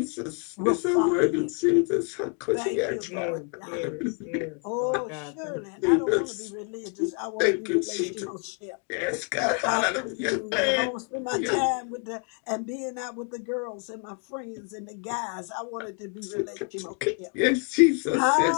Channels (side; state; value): right; quieter; 37.2 dB